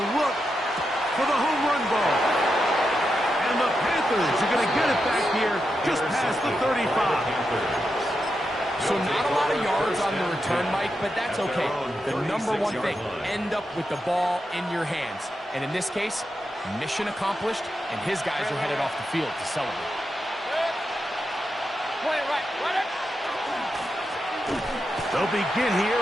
look for the home run ball. And the Panthers are going to get it back here just past the 35. So not a lot of yards on the return, Mike, but that's okay. The number one thing, end up with the ball in your hands. And in this case, mission accomplished, and his guys are headed off the field to celebrate. They'll begin here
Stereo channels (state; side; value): normal; both; correlation 0.87